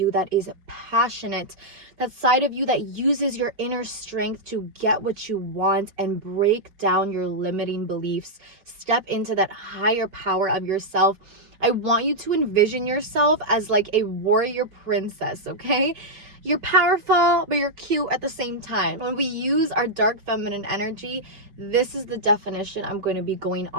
that is passionate, that side of you that uses your inner strength to get what you want and break down your limiting beliefs. Step into that higher power of yourself. I want you to envision yourself as like a warrior princess, okay? You're powerful, but you're cute at the same time. When we use our dark feminine energy, this is the definition I'm going to be going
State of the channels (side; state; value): left; late; 4.8 ms